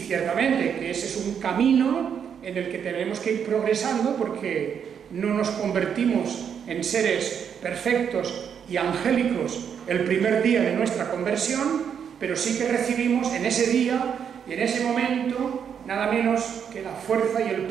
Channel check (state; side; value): quieter; left; 7.7 dB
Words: que ese es un camino en el que tenemos que ir progresando, porque no nos convertimos en seres perfectos y angélicos el primer día de nuestra conversión, pero sí que recibimos en ese día y en ese momento nada menos que la fuerza y el